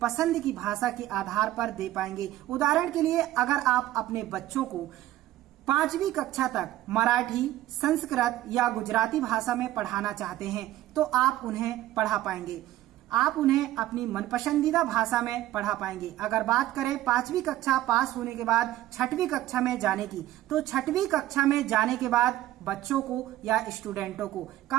पसंद की भाषा के आधार पर दे पाएंगे। उदाहरण के लिए अगर आप अपने बच्चों को 5वीं कक्षा तक मराठी, संस्कृत या गुजराती भाषा में पढ़ाना चाहते हैं तो आप उन्हें पढ़ा पाएंगे। आप उन्हें अपनी मनपसंदीदा भाषा में पढ़ा पाएंगे। अगर बात करें 5वीं कक्षा पास होने के बाद 6वीं कक्षा में जाने की, तो 6वीं कक्षा में जाने के बाद बच्चों को या स्टूडेंटों को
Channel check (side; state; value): left; quieter; 14.5 dB